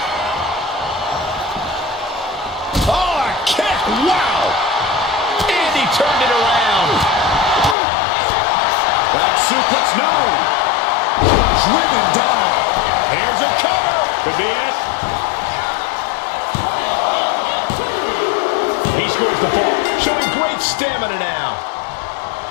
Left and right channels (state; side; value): drops out; right; at 7.8 s